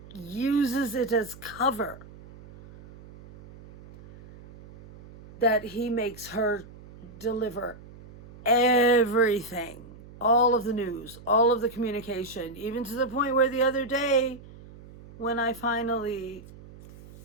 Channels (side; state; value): right; noise; hum, 19 dB below the sound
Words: uses it as cover. That he makes her deliver everything, all of the news, all of the communication, even to the point where the other day, when I finally